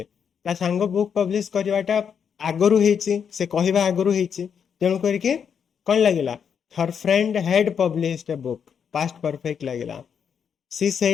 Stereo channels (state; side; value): quieter; right; 7.3 dB